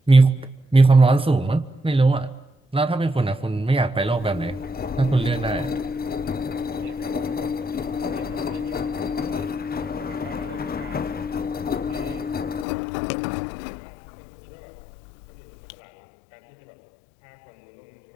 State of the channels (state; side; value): drops out; right; at 12.7 s